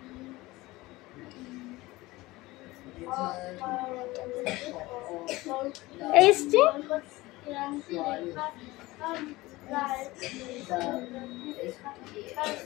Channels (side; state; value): right; quieter; 20.0 dB